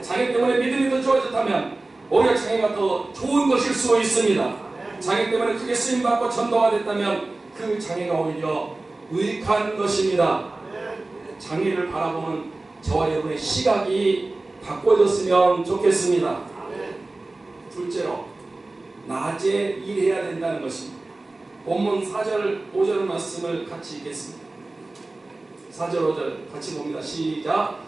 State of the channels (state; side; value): quieter; left; 3.1 dB